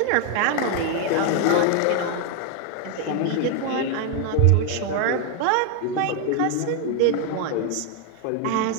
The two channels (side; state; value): both; different; correlation 0.01